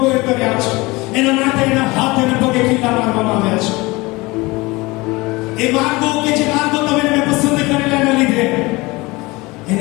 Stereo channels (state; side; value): quieter; right; 22.8 dB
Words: કર્યા છે, એના માટે એના હાથ અને પગે ખીલા મારવામાં આવ્યા છે. એ માર્ગો કે જે માર્ગો તમે એને પસંદ કરેલા એના લીધે